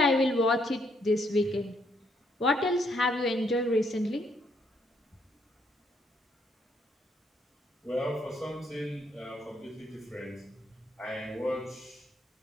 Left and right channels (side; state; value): both; normal; correlation 0.72